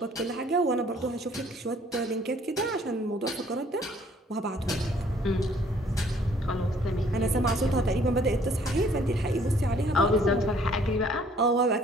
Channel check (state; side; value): normal; both; correlation 0.60